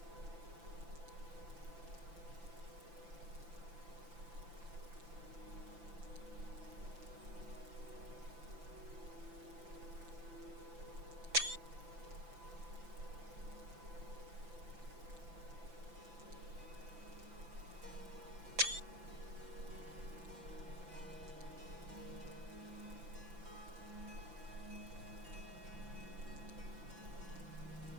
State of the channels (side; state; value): left; late; 5.9 ms